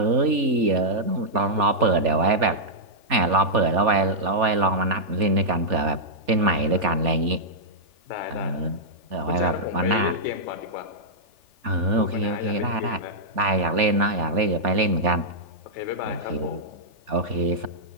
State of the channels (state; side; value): late; left; 3.4 ms